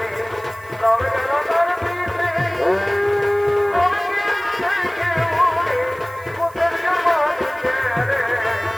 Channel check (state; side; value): noise; right; hiss, 25 dB below the sound